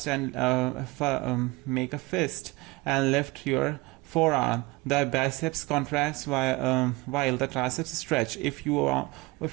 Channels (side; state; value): left; quieter; 23.1 dB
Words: and lift your forearm, the biceps contracts while the triceps stretch. If you